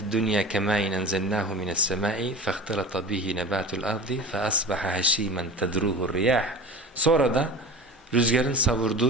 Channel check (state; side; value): normal; both; correlation 0.34